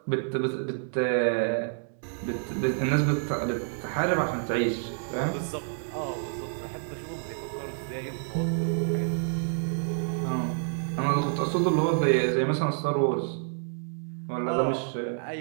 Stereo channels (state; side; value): silent; left; 59 dB below the other